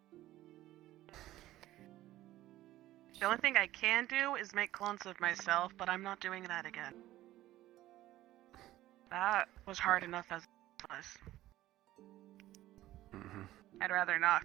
The only thing I can do is make clones of myself, but I'm not doing that again. That was hard enough as it was. I'd rather not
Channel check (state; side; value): quieter; left; 15.3 dB